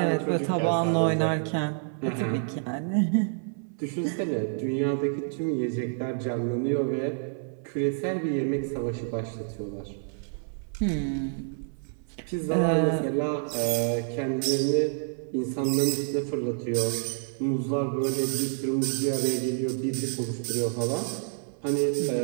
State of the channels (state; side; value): silent; left; 59 dB below the other